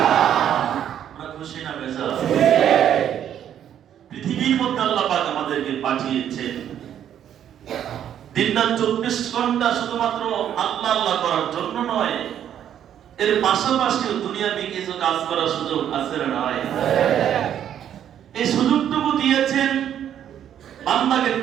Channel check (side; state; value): left; quieter; 10.0 dB